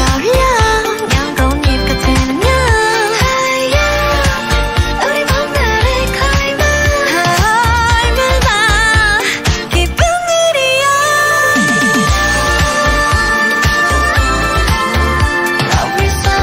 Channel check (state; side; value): identical; both; correlation 1.00